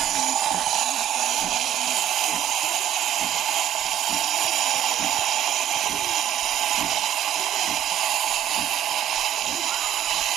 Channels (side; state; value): left; quieter; 11.2 dB